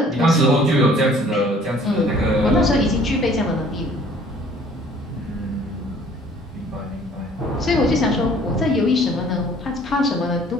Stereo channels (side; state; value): both; normal; correlation 0.55